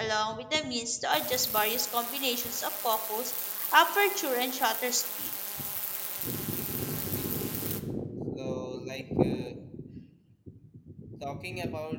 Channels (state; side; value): identical; both; correlation 1.00